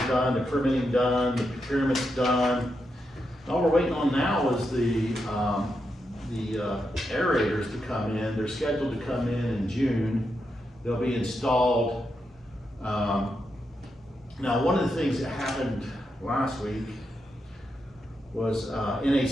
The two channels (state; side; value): normal; both; correlation 0.85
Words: done, the permitting done, the procurement's done. All we're waiting on now is the aerators to come in. They're scheduled to come in June. They'll be installed. Now, one of the things that happened last week was